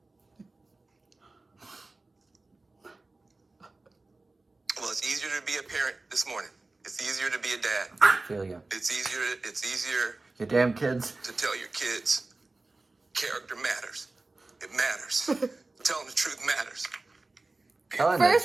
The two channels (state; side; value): quieter; left; 3.3 dB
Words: well, it's easier to be a parent this morning. It's easier to be a dad. I feel you. It's easier You damn kids. to tell your kids character matters. It matters. Telling the truth matters. Telling the